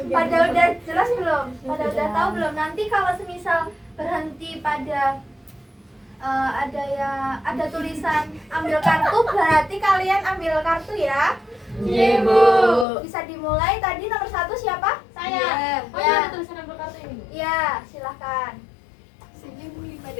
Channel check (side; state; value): right; drops out; at 12.9 s